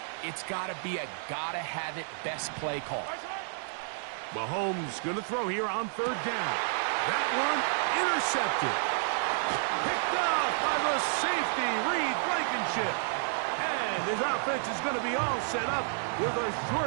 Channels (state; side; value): silent; left; digital silence